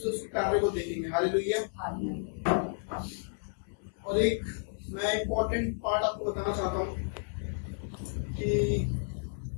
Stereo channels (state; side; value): silent; right; 57 dB below the other